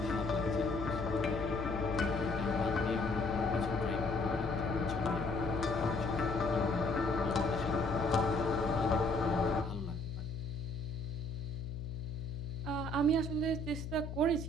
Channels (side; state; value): left; noise; hum, 7 dB below the sound